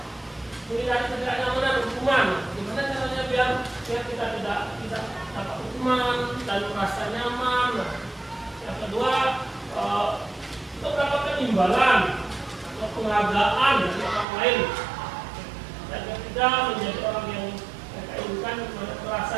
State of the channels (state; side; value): drops out; left; at 14.2 s